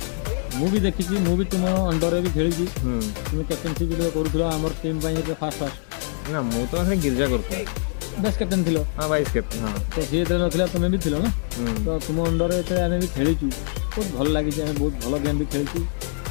मु भी देखी मु भी तुम अंडर भी खेली तुम कैप्टेनशिप करूँ आम टीम फास्ट ना मु तो गिरजा कर बेस्ट कैप्टेन थी हाँ वाइस कैप्टेन हाँ तो सी ना तुम्हें भी थी ना तो तुम अंडर आम भी खेलीचु बहुत भल लगी बहुत भल गेम भी खेलु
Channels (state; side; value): silent; right; digital silence